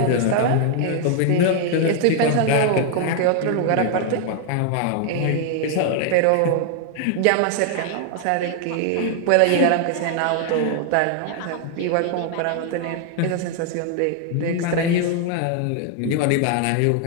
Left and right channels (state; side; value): different; both; correlation 0.00